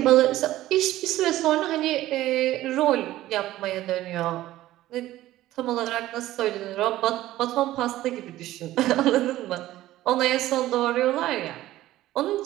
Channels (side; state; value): left; quieter; 15.2 dB